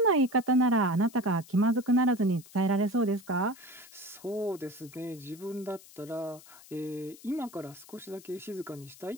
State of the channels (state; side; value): noise; left; hiss, 21 dB below the sound